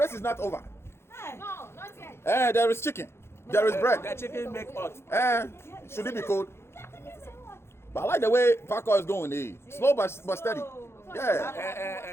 is not over. No, not yet. There is chicken. There is bread. The chicken make hot. Should it be cold? But I like the way Paco is going. Slow but steady.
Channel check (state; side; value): late; right; 0.12 ms